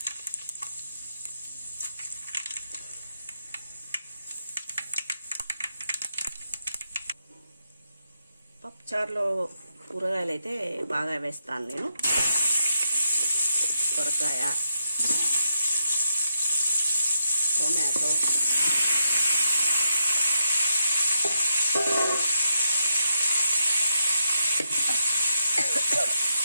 పప్పుచారులో కూరగాయలు అయితే బాగా వేస్తాను నేను. సొరకాయ, టొమాటో,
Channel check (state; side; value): inverted; both; correlation -0.81